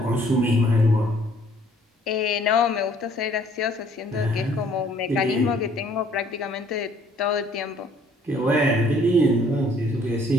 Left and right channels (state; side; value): normal; both; correlation 0.59